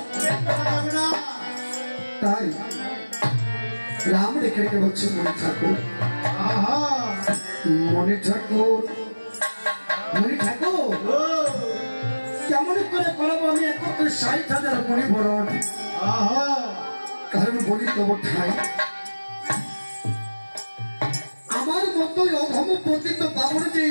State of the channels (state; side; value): inverted; both; correlation -1.00